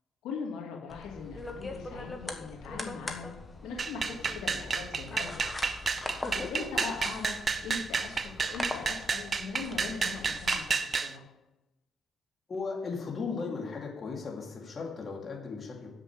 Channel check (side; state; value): both; normal; correlation 0.80